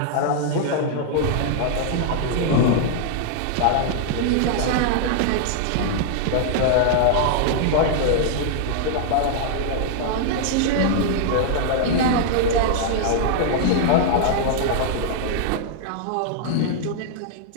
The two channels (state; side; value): different; both; correlation -0.01